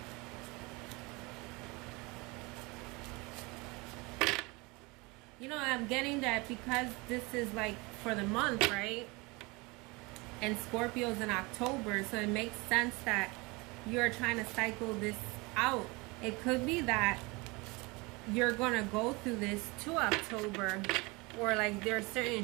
You know, I'm getting that because this is like for the month, right? And Scorpio's in October, so it makes sense that you're trying to cycle this out. It could be that you're gonna go through this to October, or like there are certain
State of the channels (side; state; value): left; quieter; 25.8 dB